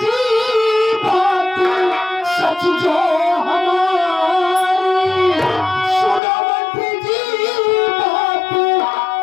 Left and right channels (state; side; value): drops out; right; at 6.2 s